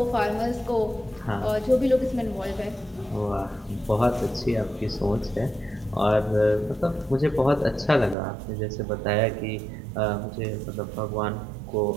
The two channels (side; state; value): left; drops out; at 8.2 s